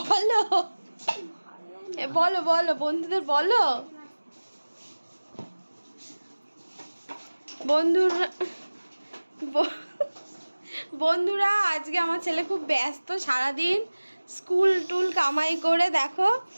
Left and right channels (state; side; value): inverted; both; correlation -1.00